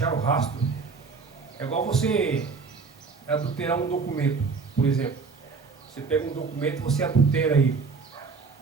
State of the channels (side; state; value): left; quieter; 4.8 dB